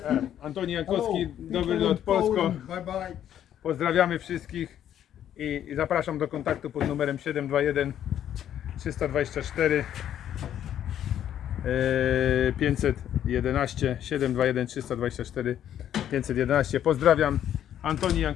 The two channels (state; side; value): quieter; right; 10.5 dB